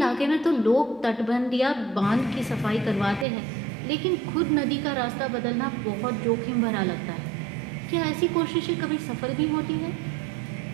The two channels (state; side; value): drops out; left; at 3.2 s